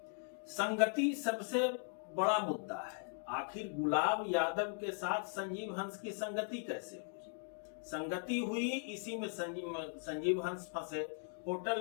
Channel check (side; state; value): right; silent; 52 dB below the other